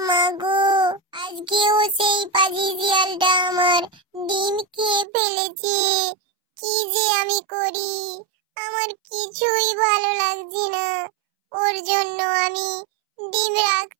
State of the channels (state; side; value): drops out; left; at 5.1 s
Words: মা গো, আজকেও সেই পাজি শিয়ালটা আমার ডিম খেয়ে ফেলেছে। কি যে আমি করি, আমার কিছুই ভালো লাগছে না। ওর জন্য আমি ডিম